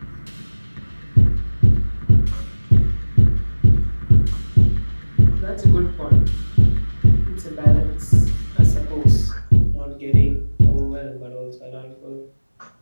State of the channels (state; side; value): inverted; both; correlation -1.00